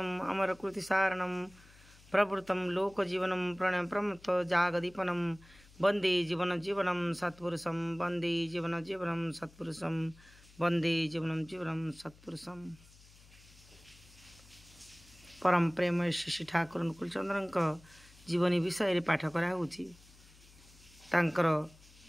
अमरकृतिसारणं प्रवृत्तं लोकजीवनं प्रणयप्रमत्त जागदीपनं वंदे जीवनं सत्पुरुषं वंदे जीवनं सत्पुरुषं वंदे जीवनं सत्पुरुषं। परम प्रेम श्री ठाकुर अनुकूल चंद्र जीवनी विषय पाठ कराऊँगी। तांकर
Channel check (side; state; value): left; noise; hum, 24 dB below the sound